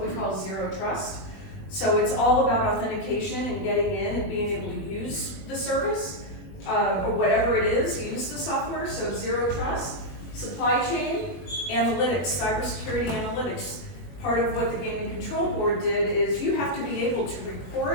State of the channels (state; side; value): late; right; 21 ms